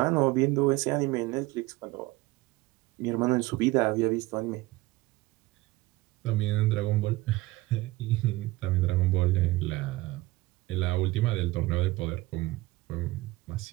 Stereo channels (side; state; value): left; quieter; 19.7 dB